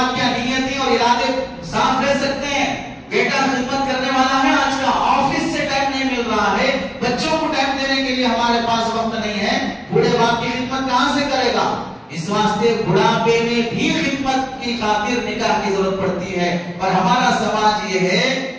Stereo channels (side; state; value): both; identical; correlation 1.00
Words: کیا نیتیں اور ارادے صاف رہ سکتے ہیں. بیٹا خدمت کرنے والا ہے، آج کا آفس سے ٹائم نہیں مل رہا ہے، بچوں کو ٹائم دینے کے لیے ہمارے پاس وقت نہیں ہے. بوڑھے باپ کی خدمت کہاں سے کرے گا؟ اس واسطے بڑھاپے میں بھی خدمت کی خاطر نکاح کی ضرورت پڑتی ہے. اور ہمارا سماج یہ ہے